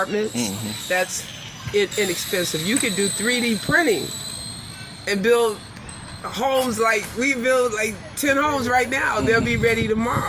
that's inexpensive. You could do 3D printing and build homes like we build like 10 homes right now. They'll be ready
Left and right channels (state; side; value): identical; both; correlation 1.00